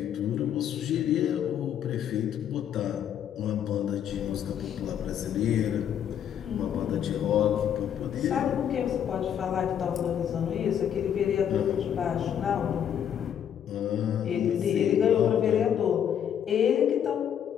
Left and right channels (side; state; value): right; quieter; 9.2 dB